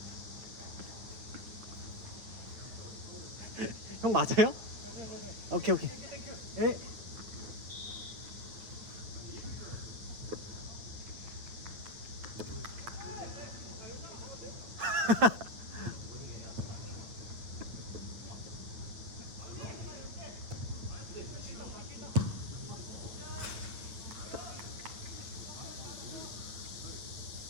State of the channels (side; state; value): left; late; 9.3 ms